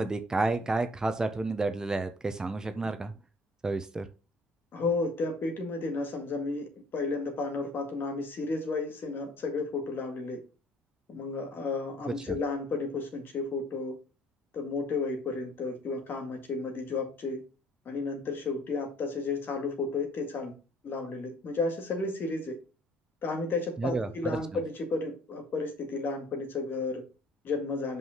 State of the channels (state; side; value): normal; both; correlation 0.55